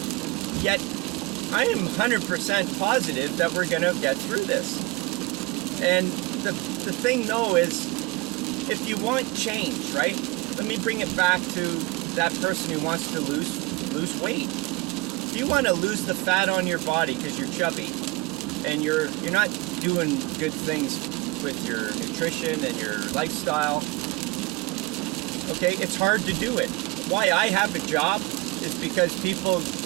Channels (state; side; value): quieter; left; 23.4 dB